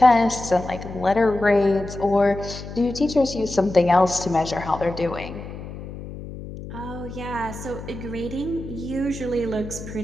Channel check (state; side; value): noise; left; hum, 11 dB below the sound